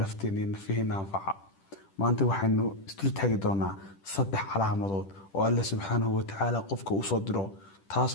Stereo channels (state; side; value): late; right; 10 ms